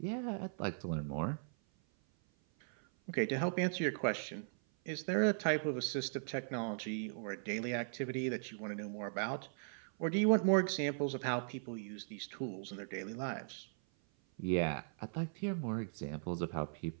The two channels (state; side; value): silent; left; 52 dB below the other